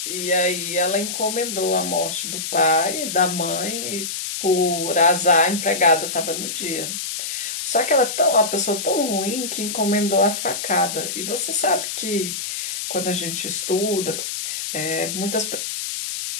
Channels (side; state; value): left; noise; hiss, 4 dB below the sound